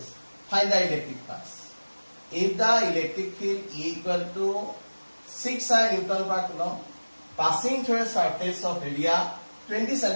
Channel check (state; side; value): inverted; both; correlation -1.00